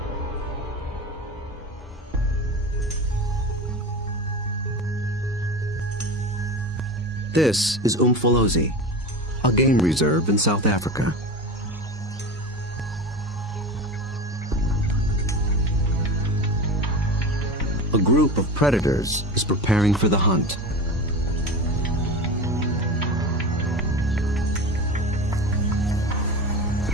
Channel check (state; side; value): normal; both; correlation 0.28